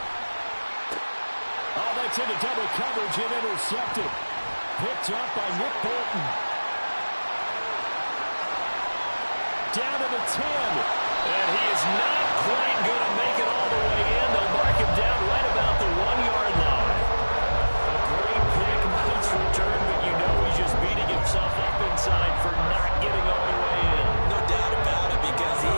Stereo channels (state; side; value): inverted; both; correlation -1.00